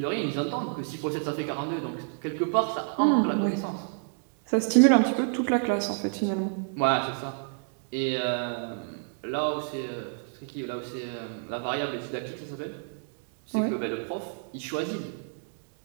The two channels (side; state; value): left; silent; 59 dB below the other